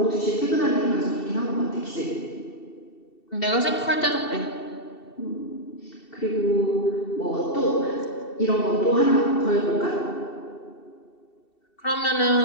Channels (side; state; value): right; late; 2.7 ms